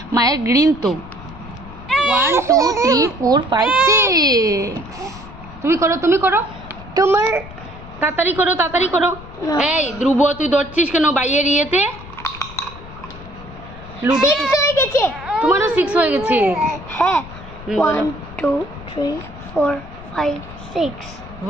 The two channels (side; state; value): left; noise; rumble, 16 dB below the sound